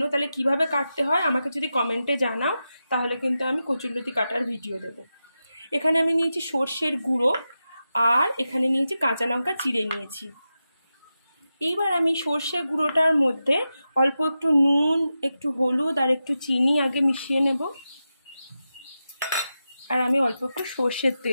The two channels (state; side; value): inverted; both; correlation -0.91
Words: তাহলে কিভাবে কাটতে হয় আমাকে যদি কমেন্টে জানাও, তাহলে কিন্তু আমি কচুরলতি কাটার ভিডিও দেব। এখানে আমি নিয়েছি সর্ষের গুঁড়ো, আর এখানে নিয়েছি কাঁচা লঙ্কা চিড়ে নিয়েছি। এইবার আমি সর্ষের গুঁড়োটার মধ্যে অল্প একটু নুন, একটু হলুদ আর একটু চিনি আগে মিশিয়ে নেব, আর আমি অল্প একটু সর্ষের